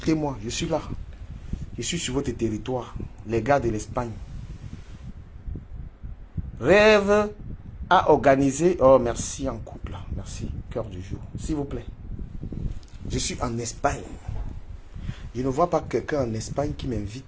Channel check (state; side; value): identical; both; correlation 1.00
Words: je suis là. Je suis sur votre territoire. Les gars de l'Espagne. Rêve à organiser. Oh, merci en couple. Merci. Cœur du jour. S'il vous plaît. Je suis en Espagne. Je ne vois pas quelqu'un en Espagne qui